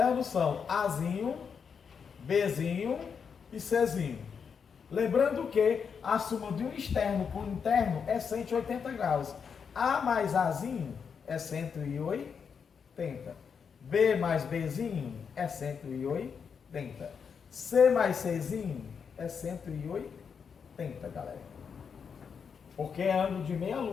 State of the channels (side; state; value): right; quieter; 6.5 dB